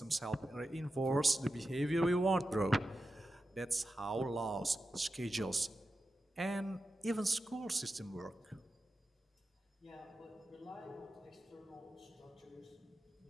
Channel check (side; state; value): both; normal; correlation 0.91